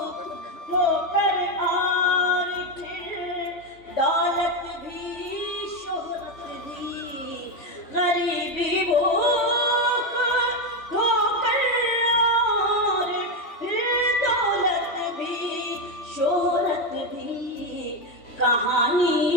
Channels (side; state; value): right; late; 3.4 ms